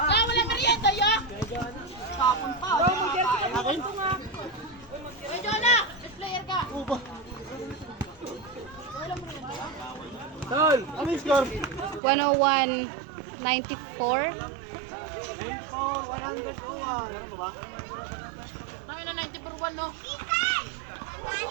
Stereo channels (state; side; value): drops out; left; at 12.0 s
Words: merienda ya? Tapon pa. Uy, Jonah! Best player ka! Tol, ano yung score? 101-94. 100 ko nga. Meron ba? Kami na 90 per 1, no? Ikan!